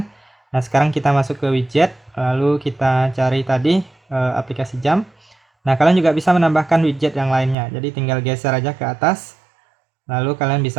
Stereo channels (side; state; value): left; drops out; at 7.6 s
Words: Nah, sekarang kita masuk ke widget, lalu kita cari tadi aplikasi jam. Nah, kalian juga bisa menambahkan widget yang lainnya. Jadi tinggal geser aja ke atas. Lalu kalian